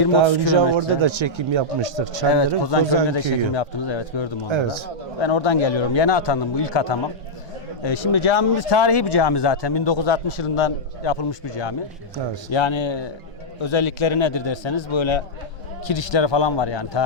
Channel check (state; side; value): normal; both; correlation -0.07